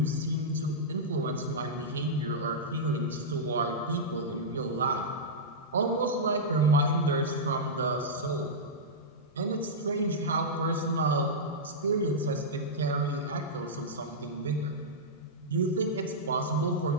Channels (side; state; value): both; normal; correlation -0.10